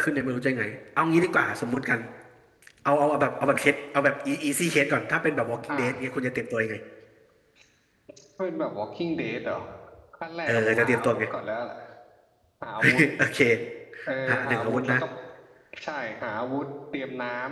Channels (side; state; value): both; identical; correlation 1.00